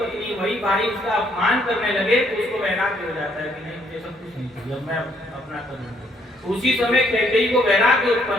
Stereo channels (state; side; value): normal; both; correlation 0.68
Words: वही भाई उसका अपमान करने लगे तो उसको वैराग्य हो जाता है कि नहीं मुझे सब कुछ नहीं चाहिए, अब मैं अपना करूंगा। उसी समय कैकेयी को वैराग्य